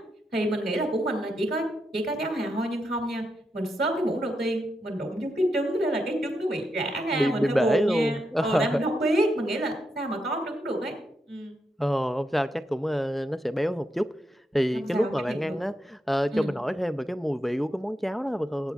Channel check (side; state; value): both; normal; correlation 0.84